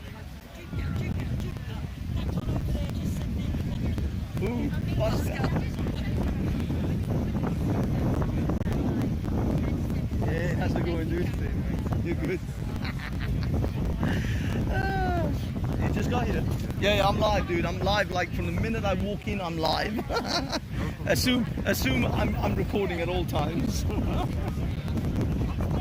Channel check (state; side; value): identical; both; correlation 1.00